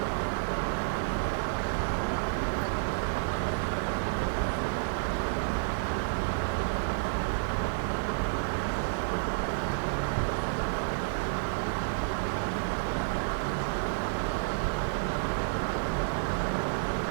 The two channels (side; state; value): left; silent; digital silence